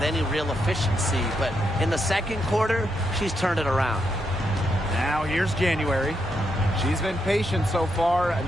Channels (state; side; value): normal; both; correlation 0.81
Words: any real efficiency, but in the second quarter, she's turned it around. Now here's January. She's been patient so far.